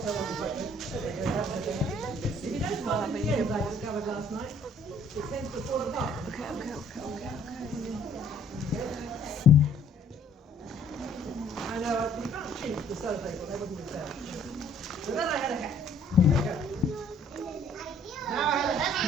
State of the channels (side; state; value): both; normal; correlation 0.60